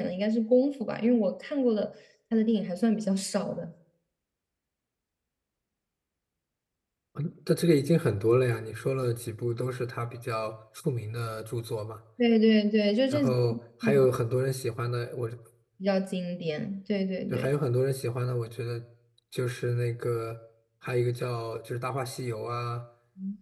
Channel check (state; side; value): identical; both; correlation 1.00